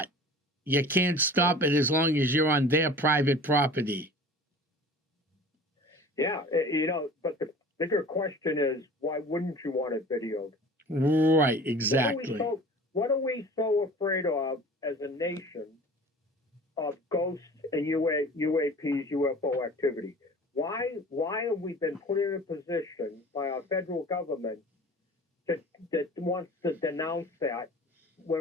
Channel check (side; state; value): both; normal; correlation 0.42